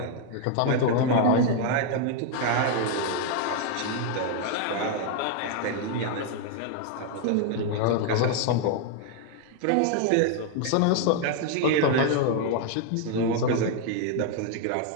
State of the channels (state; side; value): different; both; correlation 0.00